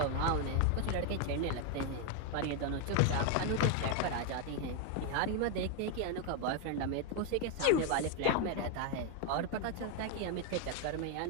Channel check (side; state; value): both; different; correlation 0.01